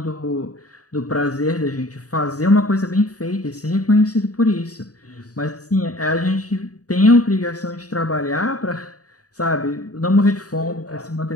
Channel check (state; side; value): late; right; 0.67 ms